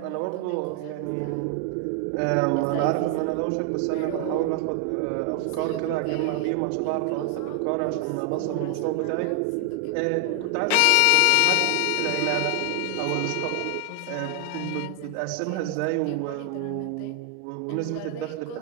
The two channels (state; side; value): different; both; correlation 0.00